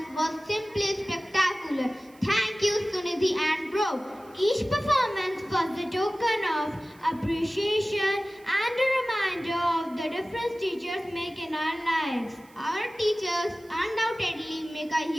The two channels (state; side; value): noise; right; hiss, 28 dB below the sound